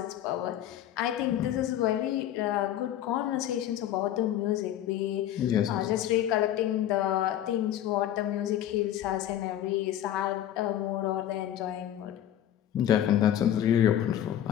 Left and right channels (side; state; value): right; quieter; 11.5 dB